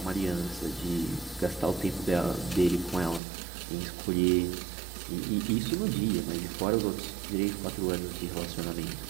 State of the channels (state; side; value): drops out; left; at 3.2 s